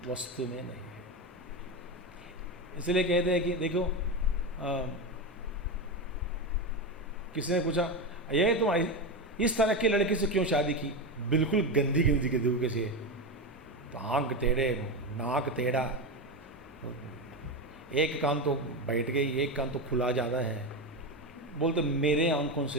वस्तु में नहीं है। इसलिए कहते हैं कि देखो, किसी ने पूछा, ये तुम इस तरह की लड़की से क्यों शादी की? बिल्कुल गंदी गंदी के तरीके से तो आंख टेढ़े, नाक टेढ़ा, एक कान तो बैठ गई, एक कान तो खुला ज़्यादा है। बोलते मेरे आंखों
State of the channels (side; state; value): both; normal; correlation 0.16